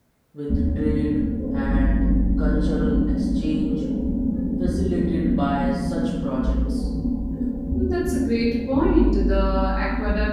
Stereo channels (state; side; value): identical; both; correlation 1.00